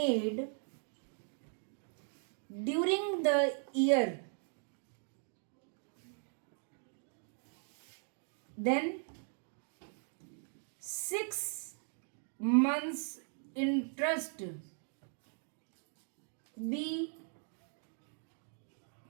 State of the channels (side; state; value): left; silent; 52 dB below the other